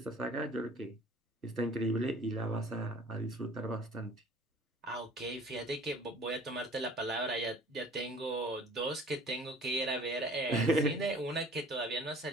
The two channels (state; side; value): normal; both; correlation 0.50